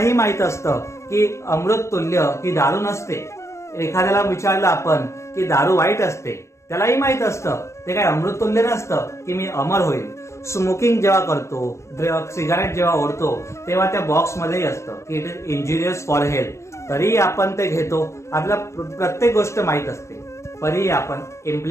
माहित असतं की अमृत तुल्य ही दारू नसते. एखाद्याला विचारलं आपण की दारू वाईट असते, त्यालाही माहित असतं ते काय अमृत तुल्य नसतं की मी अमर होईल. स्मोकिंग जेव्हा करतो, सिगारेट जेव्हा ओढतो, तेव्हा त्या बॉक्समध्येही असतं की it is injurious for health. तरीही आपण ते घेतो. आपल्याला प्रत्येक गोष्ट माहित असते, तरीही आपण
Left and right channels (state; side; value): late; right; 0.14 ms